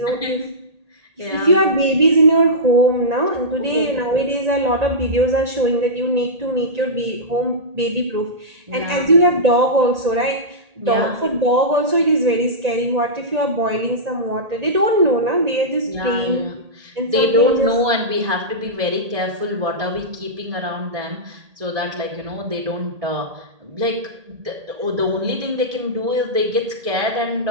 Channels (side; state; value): left; late; 1.8 ms